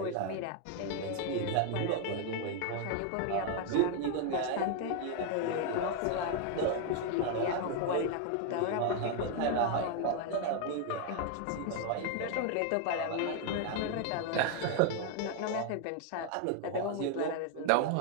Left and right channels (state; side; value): different; both; correlation 0.00